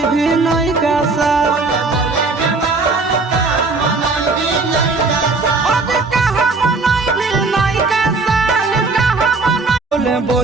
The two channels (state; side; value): quieter; left; 3.8 dB